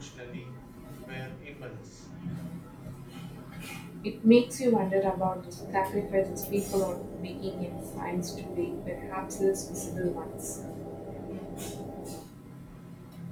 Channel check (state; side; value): identical; both; correlation 1.00